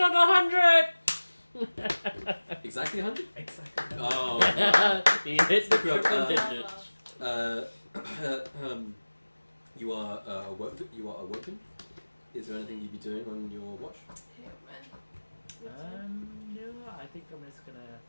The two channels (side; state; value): both; inverted; correlation -1.00